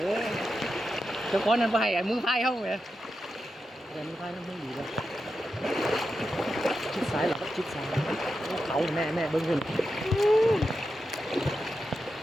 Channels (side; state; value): both; normal; correlation 0.89